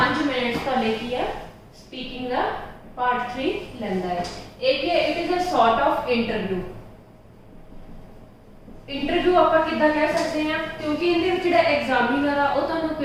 मिनट्स तुहाडे की है स्पीकिंग का पार्ट 3 लैंदा है। एक है it is a sort of interview. Interview आप किद्दां कह सकते हैं, क्योंकि इहदे जिहड़ा एग्जामिनर आ वो तुहानूं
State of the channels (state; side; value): identical; both; correlation 1.00